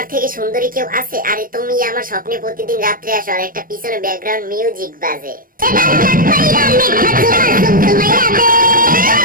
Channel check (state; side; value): late; left; 0.41 ms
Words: থেকে সুন্দরী কেউ আছে? আরে তুমি আমার স্বপ্নে প্রতিদিন রাত্রে আসো, আর একটা পিছনে ব্যাকগ্রাউন্ড মিউজিক বাজে।